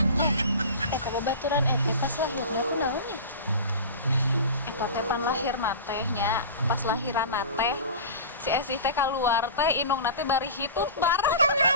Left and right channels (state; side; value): inverted; both; correlation -0.33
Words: Babaturan ete pas lahirna kunaonnya? Eta teh pan lahirna tehnya, pas lahiran teh si Esih teh keluar teh inungna teh bari hitut bar.